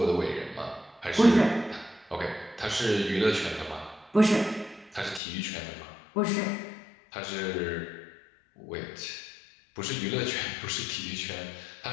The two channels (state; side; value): drops out; right; at 5.2 s